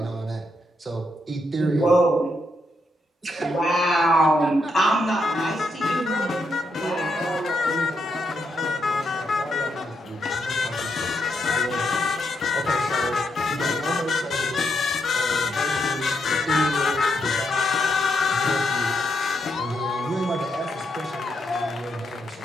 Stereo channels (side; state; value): both; normal; correlation 0.80